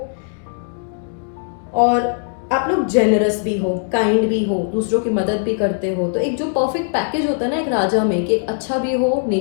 और आप लोग जेनरस भी हो, काइंड भी हो, दूसरों की मदद भी करते हो। तो एक जो परफेक्ट पैकेज होता है ना एक राजा में, कि अच्छा भी हो,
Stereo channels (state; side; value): silent; right; 66 dB below the other